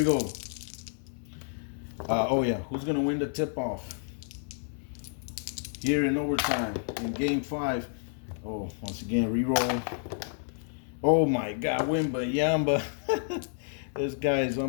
go. Oh yeah, who's going to win the tip-off? Here in overtime, in Game 5. Oh, once again, re-roll. Oh my God, Wembanyama. This guy is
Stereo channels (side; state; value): right; silent; 58 dB below the other